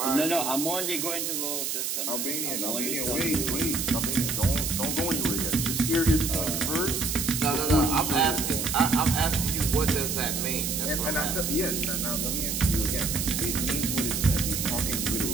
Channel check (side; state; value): right; noise; hiss, 1 dB below the sound